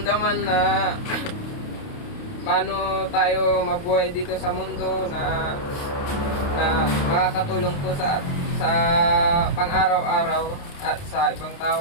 na paano tayo mabuhay dito sa mundo na makakatulong po sa pang-araw-araw at sa ibang tao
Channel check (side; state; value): right; late; 29 ms